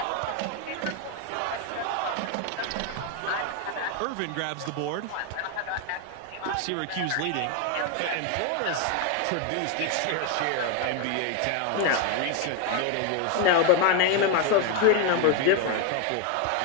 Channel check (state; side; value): different; both; correlation 0.01